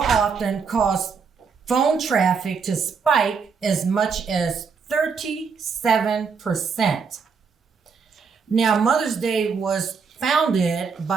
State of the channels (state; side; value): quieter; left; 5.6 dB